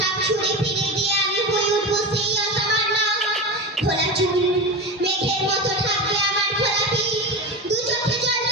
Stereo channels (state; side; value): normal; both; correlation 0.23